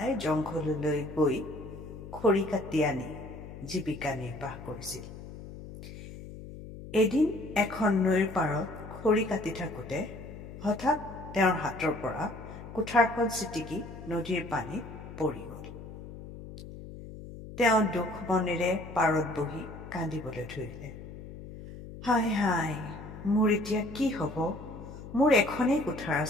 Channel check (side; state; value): left; noise; hum, 13 dB below the sound